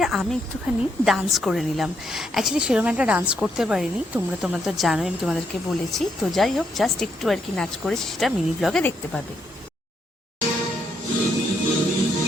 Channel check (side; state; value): both; normal; correlation 0.76